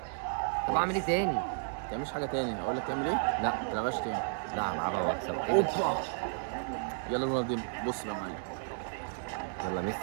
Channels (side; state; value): left; silent; 56 dB below the other